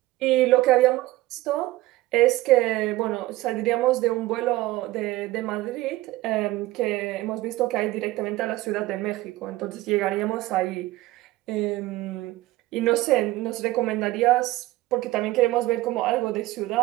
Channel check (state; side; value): quieter; left; 17.8 dB